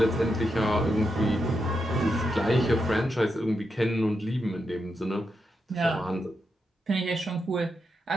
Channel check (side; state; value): both; normal; correlation 0.84